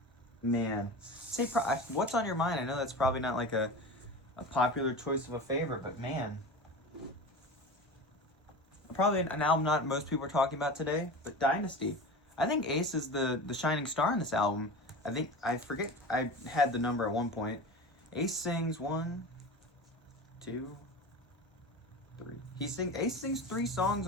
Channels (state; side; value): normal; both; correlation 0.30